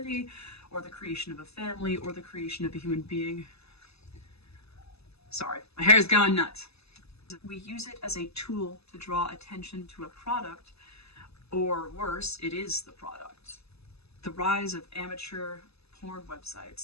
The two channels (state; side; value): late; right; 0.79 ms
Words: or the creation of a family, or the creation of a human being. Sorry, my hair's going nuts. We use it as a tool to draw attention to a product, or worse, it is the product. The rise of amateur porn